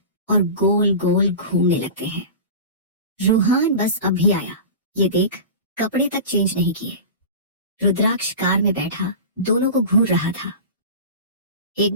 और गोल गोल घूमने लगते हैं। रूहान, बस अभी आया, ये देख, कपड़े तक चेंज नहीं किए। रुद्राक्ष कार में बैठा दोनों को घूर रहा था। एक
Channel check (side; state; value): both; inverted; correlation -0.31